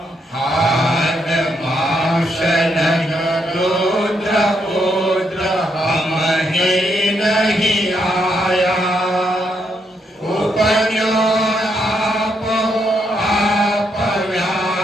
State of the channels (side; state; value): both; normal; correlation 0.77